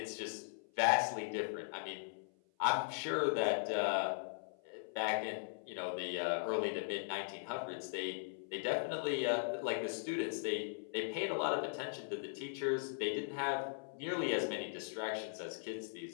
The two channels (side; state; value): right; silent; 52 dB below the other